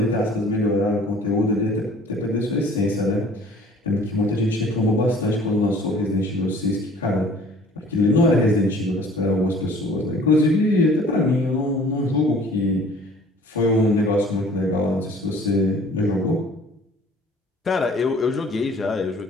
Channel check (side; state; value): both; normal; correlation 0.51